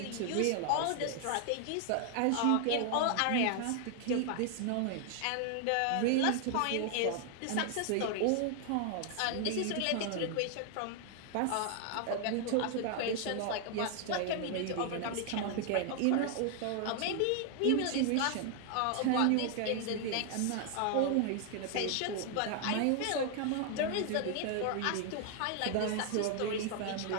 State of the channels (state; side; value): different; both; correlation 0.00